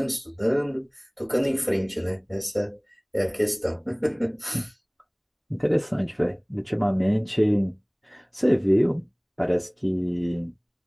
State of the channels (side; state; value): both; identical; correlation 1.00